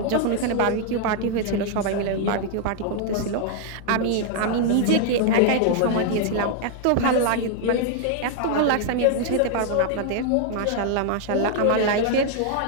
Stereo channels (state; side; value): different; both; correlation 0.00